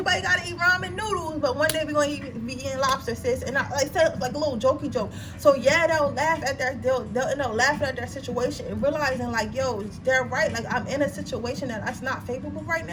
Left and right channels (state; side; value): identical; both; correlation 1.00